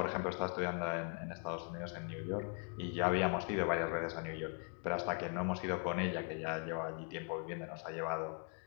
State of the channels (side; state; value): right; quieter; 39.3 dB